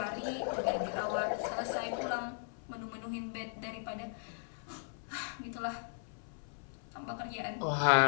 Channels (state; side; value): silent; right; 53 dB below the other